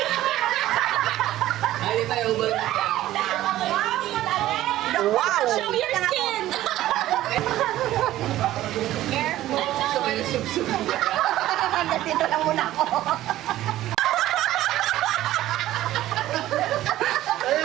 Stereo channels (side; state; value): left; quieter; 14.5 dB